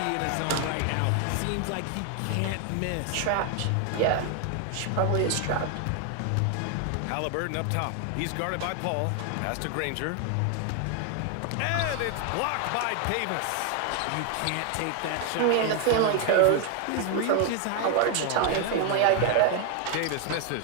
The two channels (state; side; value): different; both; correlation 0.00